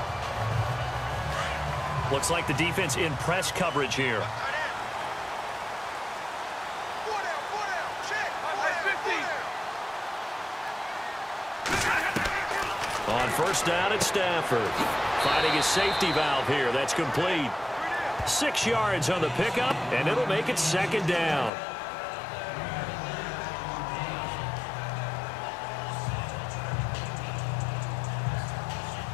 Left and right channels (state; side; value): drops out; right; at 21.5 s